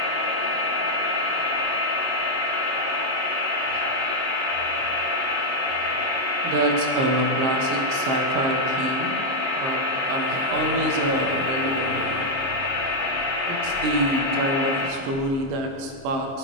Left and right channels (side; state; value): left; late; 23 ms